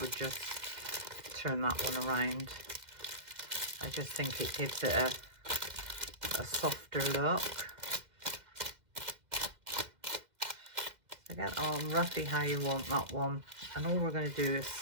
just turn that one around. I just think it gives it a softer look. So get on roughly how you want that one. And all we're going to do is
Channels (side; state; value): left; late; 2.0 ms